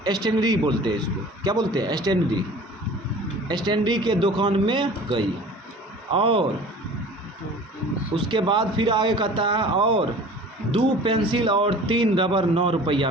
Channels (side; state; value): both; normal; correlation 0.44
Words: स्टेनरी बोलते हैं इसको, क्या बोलते हैं, स्टेनरी के दुकान में गई, और उसके बाद फिर आगे कहता है और 2 पेंसिल और 3 रबर 9 रुपया